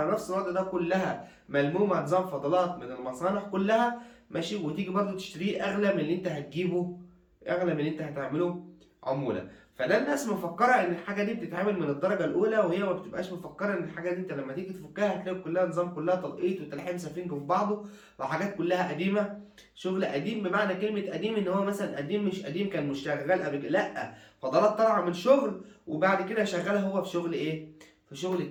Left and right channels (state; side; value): identical; both; correlation 1.00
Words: نفس الوضع ده، كلها ملمومه نظام فضلات من المصانع كلها، ماشي، وتيجي برضو تشتريه اغلى من اللي انت هتجيبه، اغلى من اللي انت هتعمله عموله. فده الناس مفكره ان الحاجه دي بتتعمل من الدرجه الاولى، وهي ما بتبقاش مفكره ان الحاجه دي انت لما تيجي تفكها هتلاقي كلها نظام، كلها تلقيط وتلحيم سفنج في بعضه، وحاجات كلها قديمه. شغل قديم بمعنى كلمه قديم ان هو مثلا قديم، مش قديم كان مش شغال قبل كده، لا، فضلات طالعه من شغل وبعد كده شغالها هو في شغل ايه، في شغل